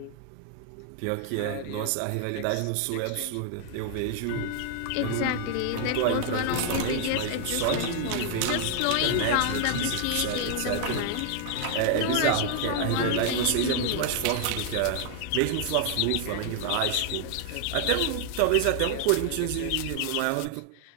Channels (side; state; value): both; different; correlation 0.00